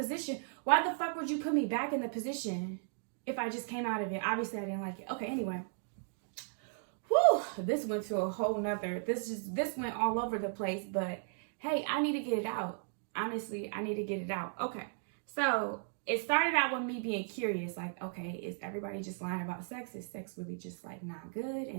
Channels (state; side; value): silent; left; digital silence